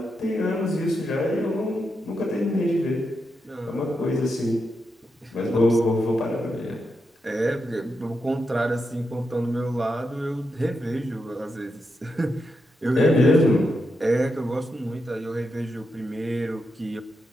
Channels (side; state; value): both; normal; correlation 0.85